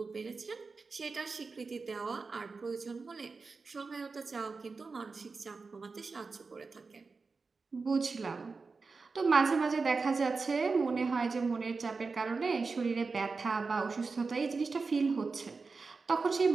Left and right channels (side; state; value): left; quieter; 4.4 dB